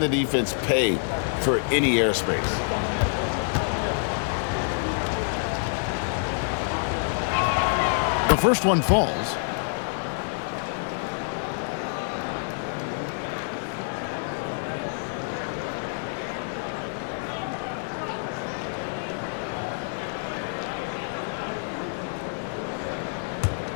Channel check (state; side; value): silent; right; digital silence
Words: the defense pay for any airspace. The first one falls.